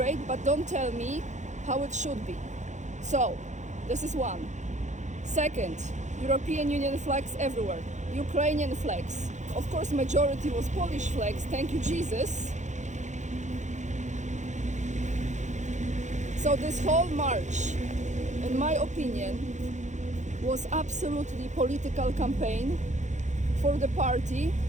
but don't tell me how it should be. So, this is one. Second, European Union flags everywhere. Ukrainian flags. Of course, majority was Polish flags, thank you Jesus. So this whole march, in my opinion, was absolutely political campaign for the party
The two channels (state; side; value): late; left; 0.35 ms